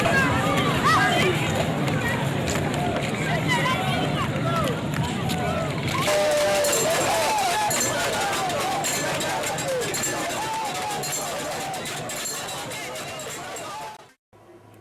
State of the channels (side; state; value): both; identical; correlation 1.00